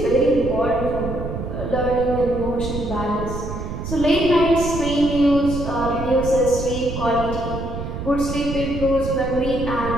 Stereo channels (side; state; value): right; noise; rumble, 6 dB below the sound